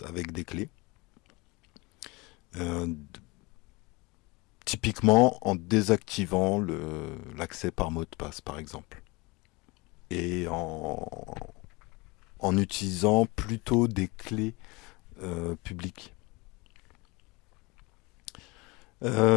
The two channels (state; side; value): quieter; right; 25.3 dB